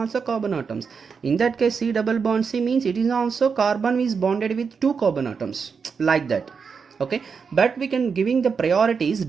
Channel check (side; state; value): left; quieter; 5.8 dB